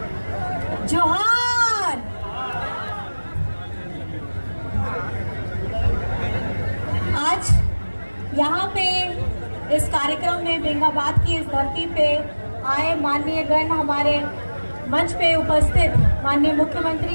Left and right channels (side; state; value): both; inverted; correlation -1.00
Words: जोहार। आज यहाँ पे इस कार्यक्रम में बेंगाबाद की इस धरती पे आए माननीय गण, हमारे मंच पे उपस्थित माननीय